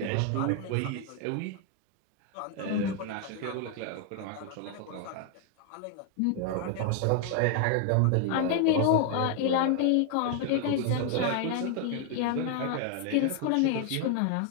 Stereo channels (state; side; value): different; both; correlation 0.00